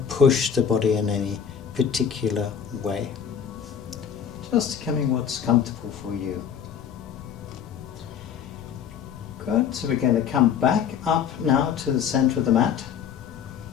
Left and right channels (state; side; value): quieter; right; 7.9 dB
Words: push the body in any particular way. Just becoming what's comfortable for you. Good, so we're going to come back up now to the center of the mat.